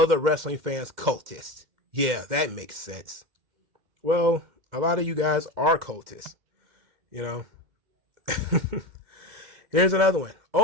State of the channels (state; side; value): late; left; 2.1 ms